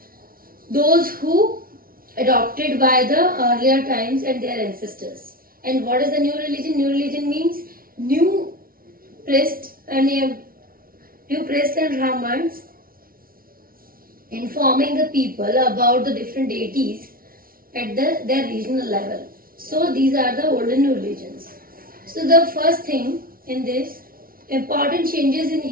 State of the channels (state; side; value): late; left; 0.43 ms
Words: those who adopted by the earlier times and their ancestors. And what is the new religion? New religion means new priest and Brahmins informing the people about the different deities at their regional level. So these are the old and new religions. So the first thing in this, important changes in